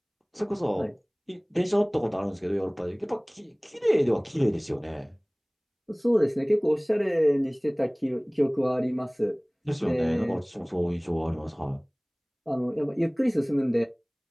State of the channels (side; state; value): both; identical; correlation 1.00